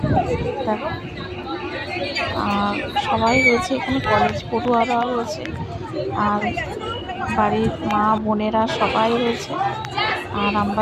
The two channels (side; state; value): both; identical; correlation 1.00